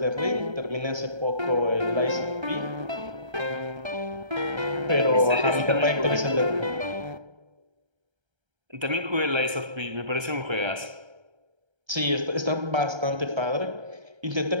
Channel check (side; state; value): left; late; 1.3 ms